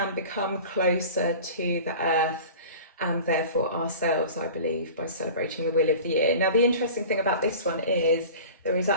closer to the earth and therefore ourselves, I believe, by celebrating the Wheel of the Year. Now, the interesting thing about this one is there is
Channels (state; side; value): inverted; both; correlation -0.38